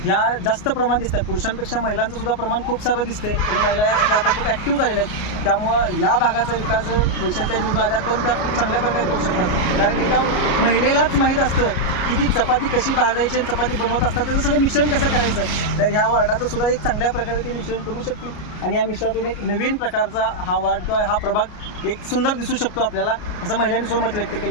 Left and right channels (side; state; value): right; late; 33 ms